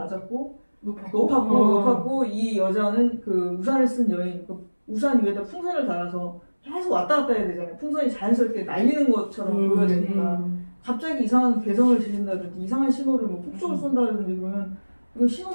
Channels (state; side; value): inverted; both; correlation -1.00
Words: 높았고 이 여자는 그 우산을 쓴 여인 그 우산 위에다 풍선을 달아서 계속 왔다 갔다 해야 되잖아요. 풍선이 자연스럽게 날리는 것처럼 보여야 되니까 갑자기 이상한 개성을 지른다든지 이상한 신호를 뭐 폭죽을 쏜다든지 그러면 그